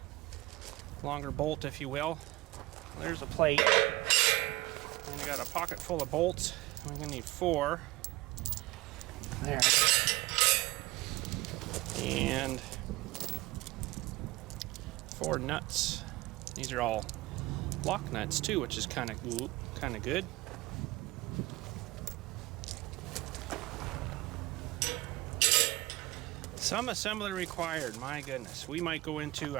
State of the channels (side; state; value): left; quieter; 20.7 dB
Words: longer bolt if you will. There's a plate, and I got a pocket full of bolts. We're gonna need 4 there, and 4 nuts. These are all lock nuts too, which is kind of good. Some assembly required, my goodness. We might go into